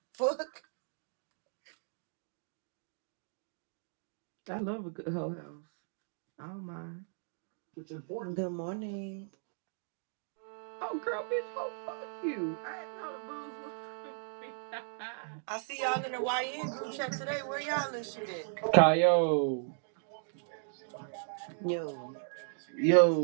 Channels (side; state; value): left; silent; digital silence